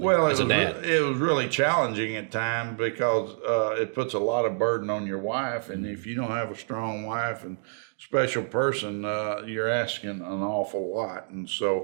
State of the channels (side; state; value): left; silent; digital silence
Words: Well, it was really challenging at times because it puts a lot of burden on your wife, and if you don't have a strong wife and special person, you're asking an awful lot. And